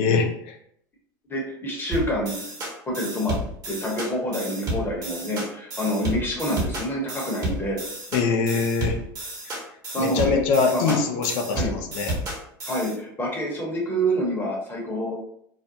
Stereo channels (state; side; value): normal; both; correlation 0.24